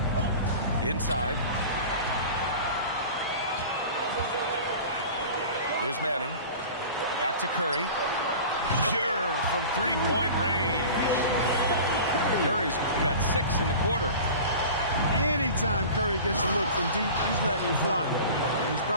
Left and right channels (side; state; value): both; inverted; correlation -0.38